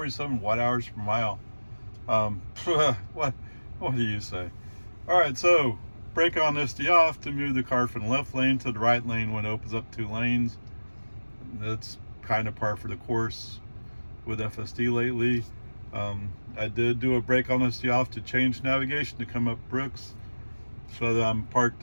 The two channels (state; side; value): inverted; both; correlation -1.00